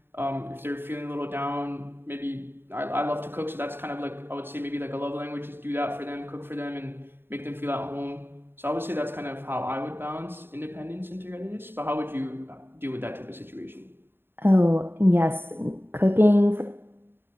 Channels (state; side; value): late; left; 0.10 ms